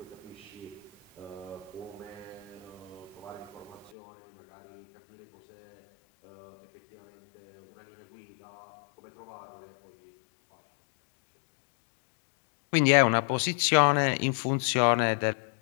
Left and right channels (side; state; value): right; drops out; at 3.9 s